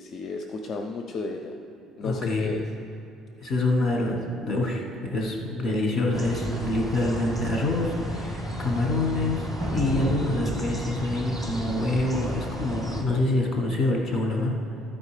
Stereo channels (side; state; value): both; normal; correlation 0.64